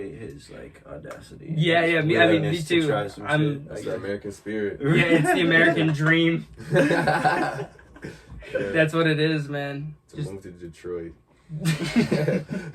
his audacity. Yeah, I mean, me too. That's the American spirit. Yeah, it's the American dream. That's what it is, man. To move to Detroit.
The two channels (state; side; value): identical; both; correlation 1.00